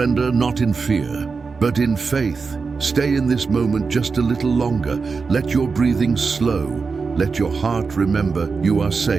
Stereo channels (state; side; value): quieter; left; 4.8 dB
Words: not in fear, but in faith. Stay in this moment just a little longer. Let your breathing slow. Let your heart remember you are